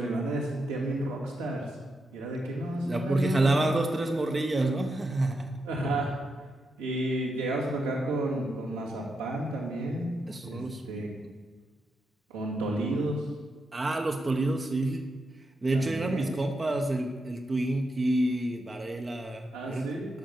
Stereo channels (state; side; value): normal; both; correlation 0.84